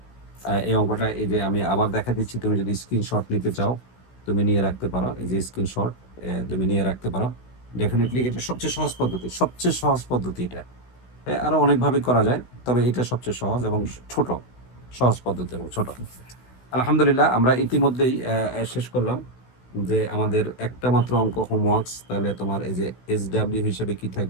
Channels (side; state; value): right; late; 16 ms